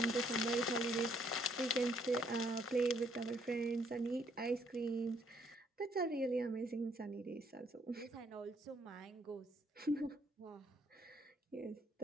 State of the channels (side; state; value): both; normal; correlation 0.68